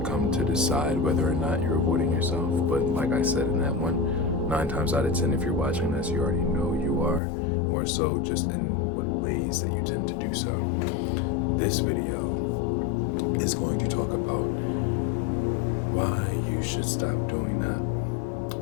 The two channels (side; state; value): right; drops out; at 7.2 s